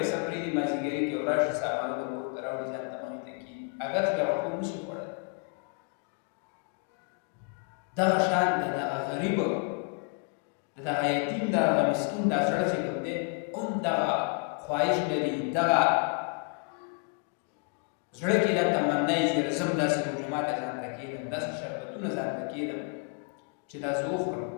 پرېږدي مازدیګري کې وراشي سامانونه کور ته راوړي ځان ته مخې ته کېږي اگر چې هغه کور نشي خوړلی. دغه شان د دغه غریب د دغه یتیم د هغه مسکین دا زړه چې کوم دی هم دغه خواهش لري، دغه زړه کې دا تمنا یې چې زه هم داسې روژه ماته ځان ته کېږدم، داسې شربتونه ځان ته کېږدم چې دا زه وخورم،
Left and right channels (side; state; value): right; quieter; 36.4 dB